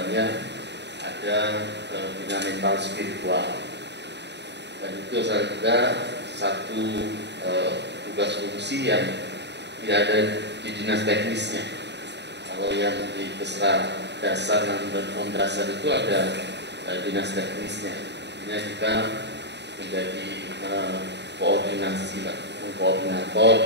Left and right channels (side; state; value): left; late; 0.50 ms